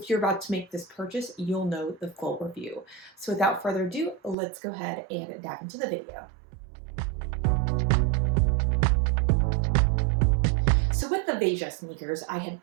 you're about to make this purchase, you'll know the full review. So without further ado, let's go ahead and dive into the video. So with the VEJA sneakers, I had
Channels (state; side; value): drops out; left; at 4.4 s